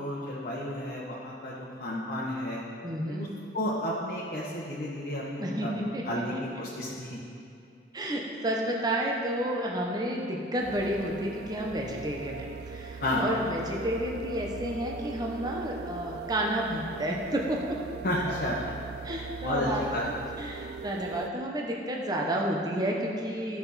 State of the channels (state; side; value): normal; both; correlation 0.42